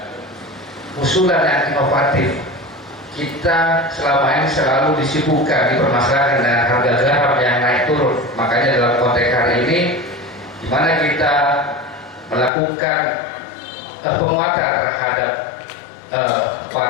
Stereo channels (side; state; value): right; drops out; at 12.5 s